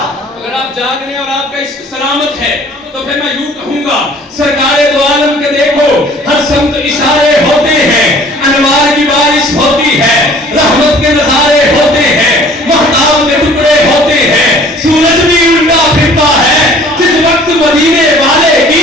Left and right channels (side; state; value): both; normal; correlation 0.52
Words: اگر آپ جاگ رہے ہیں اور آپ کا عشق سلامت ہے تو پھر میں یوں کہوں گا سرکار دو عالم کے دیکھو ہر سمت اشارے ہوتے ہیں. انوار کی بارش ہوتی ہے. رحمت کے نظارے ہوتے ہیں. مہتاب کے ٹکڑے ہوتے ہیں. سورج بھی الٹا پھرتا ہے جس وقت مدینے والے کی